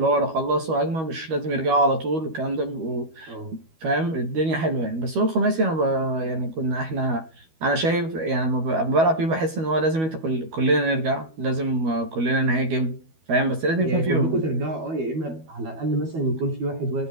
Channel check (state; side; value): late; left; 12 ms